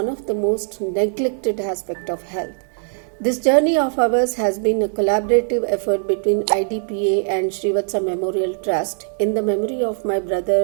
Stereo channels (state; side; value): silent; left; 60 dB below the other